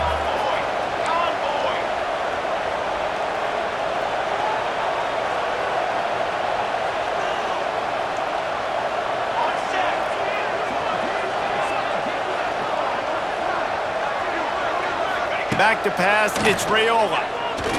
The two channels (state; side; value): identical; both; correlation 1.00